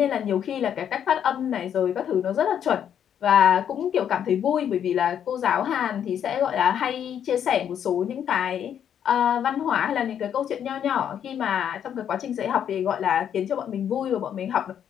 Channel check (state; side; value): quieter; right; 9.1 dB